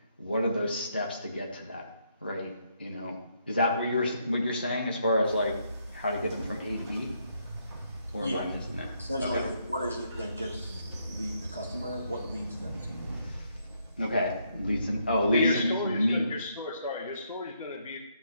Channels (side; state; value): both; inverted; correlation -0.74